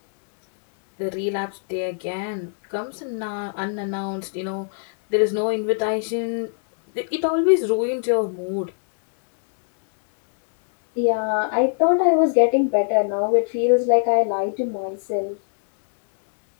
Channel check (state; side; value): silent; right; digital silence